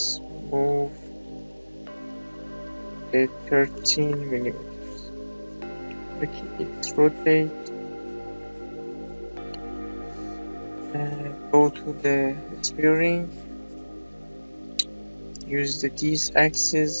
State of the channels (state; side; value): inverted; both; correlation -1.00